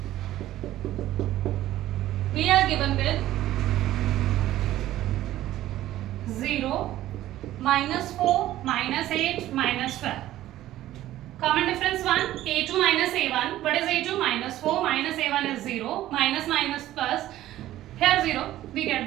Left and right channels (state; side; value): quieter; left; 14.2 dB